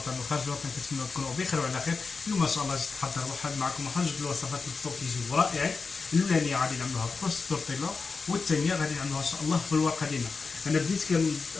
وخارج الوطن كنتمنى تكونوا بخير وعلى خير. اليوم ما شاء الله جيت نحضر واحد معكم واحد جوج الوصفات الفطور كيجيو رائعين. الاولانيه غادي نعملوها بكروس التورتيلا، والثانيه غادي نعملوها ان شاء الله بالورقه ديالنا. انا بديت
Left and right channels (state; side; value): quieter; right; 4.6 dB